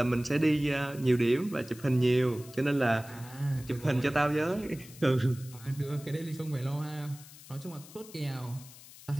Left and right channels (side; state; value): left; noise; hiss, 19 dB below the sound